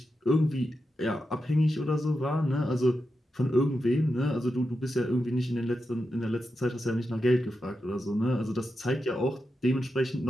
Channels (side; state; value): both; normal; correlation 0.88